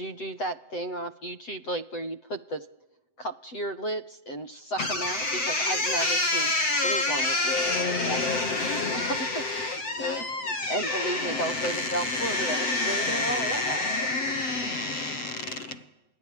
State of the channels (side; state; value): right; late; 7.8 ms